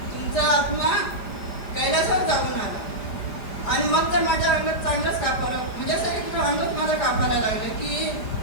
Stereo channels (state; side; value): late; right; 4.9 ms